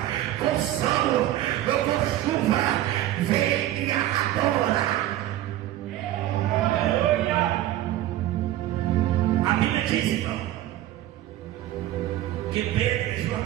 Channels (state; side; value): quieter; left; 13.9 dB